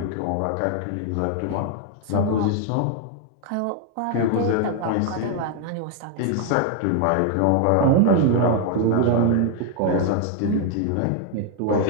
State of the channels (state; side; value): different; both; correlation 0.00